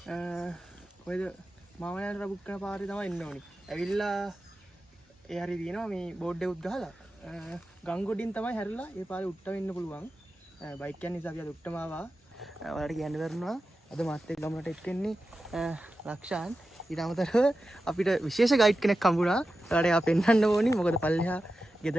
whether Mama and Rabuka party the Noni. A villa Aridino, me board de Gala. Gangudin Tama Herla, if I would turn in the Pulwang. Bike can is a Uttamava, or Yanverna. අද මාත් එක්ක ගමනට එක්කෙන්නේ ලක්ෂාන් ඊට අමතරව අපිට විශේෂ guide කෙනෙක් හම්බුණා. ඒකට එයා පෙන්වන්න ඕනි. මොකද පල්ලෙහා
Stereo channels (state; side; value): normal; both; correlation 0.92